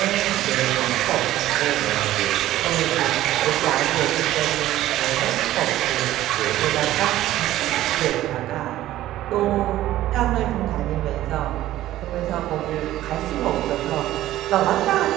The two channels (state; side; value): quieter; left; 14.4 dB